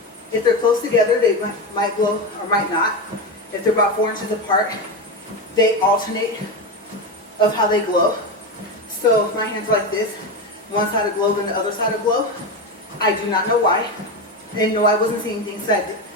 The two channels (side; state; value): both; normal; correlation 0.16